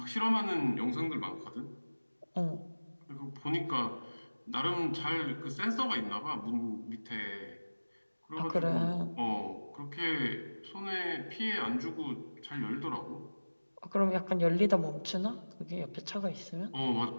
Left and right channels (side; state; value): both; inverted; correlation -1.00